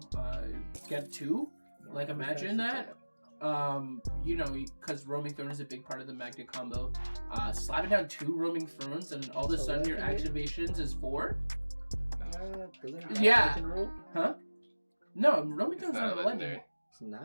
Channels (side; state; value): both; inverted; correlation -1.00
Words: get 2, like imagine that. Because Roaming Throne is a big part of the Magda combo. Slapping down 2 Roaming Thrones and all of a sudden your activations is 4. Yeah. Huh? No, Roaming Throne's not a legendary. It's